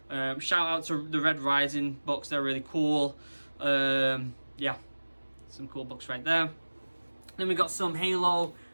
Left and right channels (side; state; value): both; inverted; correlation -1.00